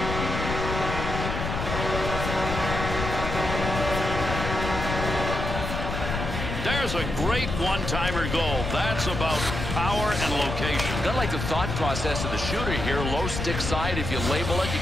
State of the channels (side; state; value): left; noise; rumble, 4 dB below the sound